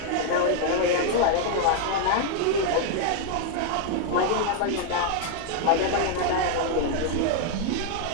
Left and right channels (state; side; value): different; both; correlation 0.00